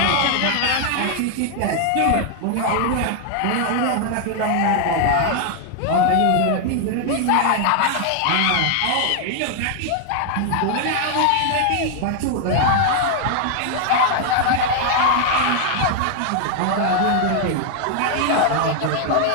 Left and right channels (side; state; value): both; different; correlation 0.00